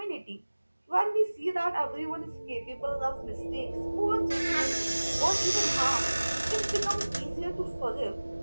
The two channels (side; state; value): both; inverted; correlation -1.00